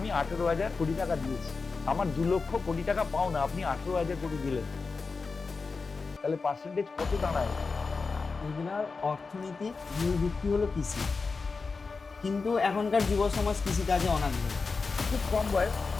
18,000 কোটি টাকা দিয়েছি, আমার 2 লক্ষ কোটি টাকা পাওনা, আপনি 18,000 কোটি দিলেন, তাহলে পার্সেন্টেজ কত দাঁড়ায়? এগুলার অর্থনীতি মূল ভিত্তি হলো কৃষি, কিন্তু এখনকার যুব সমাজ কৃষিকাজে অনাগ্রহী। খুব কম বয়স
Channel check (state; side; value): quieter; right; 4.4 dB